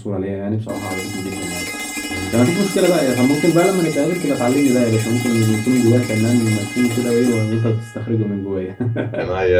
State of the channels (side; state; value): both; identical; correlation 1.00